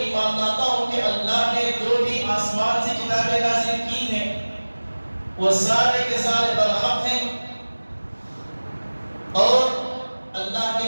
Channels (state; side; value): inverted; both; correlation -1.00